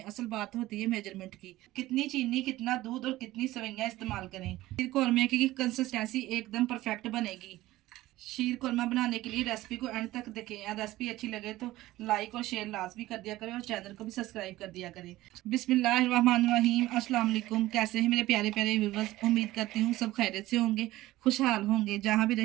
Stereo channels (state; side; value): quieter; left; 16.8 dB